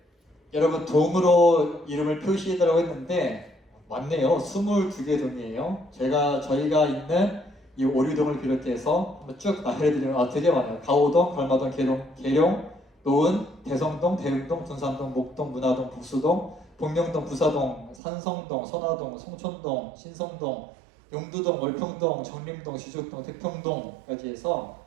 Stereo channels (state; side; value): drops out; left; at 18.0 s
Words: 여러분 동으로 이름을 표시해달라고 했는데 맞네요. 22개 동이에요. 저희가 있는 이 오류동을 비롯해서 한번 쭉 알려드리면 되게 많아요. 가오동, 걸마동, 계룡, 노은, 대성동, 대흥동, 둔산동, 목동, 문화동, 북수동, 복령동, 부사동, 산성동, 선화동, 송촌동, 신성동, 용두동, 월평동, 정림동, 시족동, 태평동까지 해서